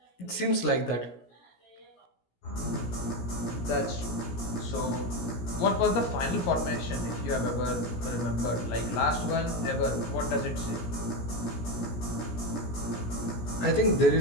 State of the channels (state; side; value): late; right; 17 ms